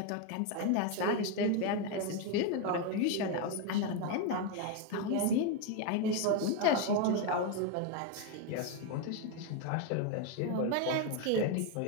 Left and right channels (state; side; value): different; both; correlation 0.02